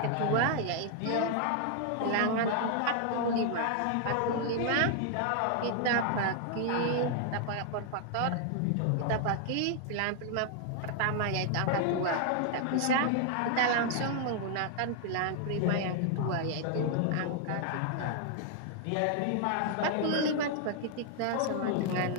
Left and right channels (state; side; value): different; both; correlation 0.00